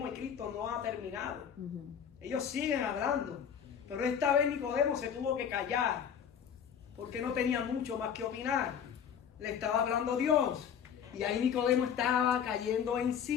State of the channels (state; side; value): quieter; right; 8.1 dB